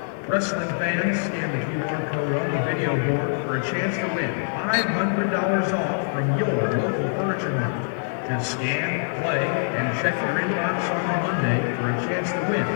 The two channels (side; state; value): right; silent; digital silence